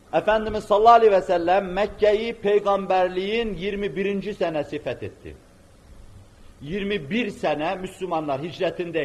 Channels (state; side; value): identical; both; correlation 1.00